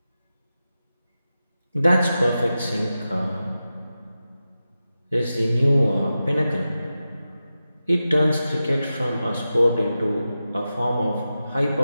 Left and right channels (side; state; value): both; inverted; correlation -0.92